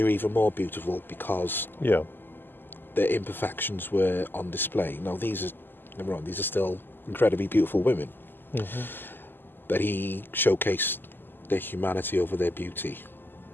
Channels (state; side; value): late; right; 0.095 ms